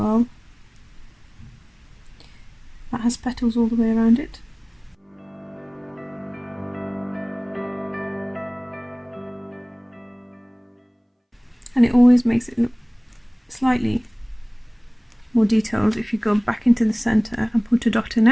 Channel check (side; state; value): both; identical; correlation 1.00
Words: that has petals all the way around it. And it always makes it look slightly more detailed if you go back into the center and put a dot in